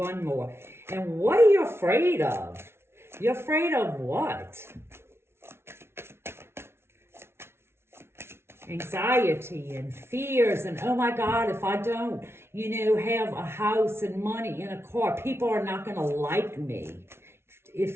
more. And what are you afraid of? You're afraid of what? Anxiety and fears and, oh my God, if I don't, have a house and money and a car, people are not going to like me.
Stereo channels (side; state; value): left; late; 0.12 ms